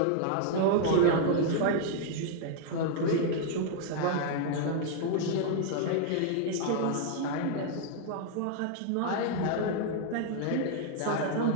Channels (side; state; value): both; different; correlation 0.00